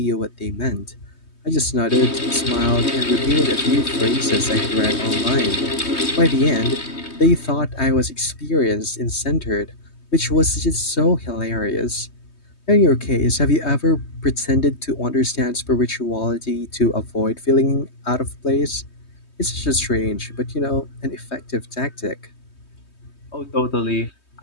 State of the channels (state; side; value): late; right; 3.2 ms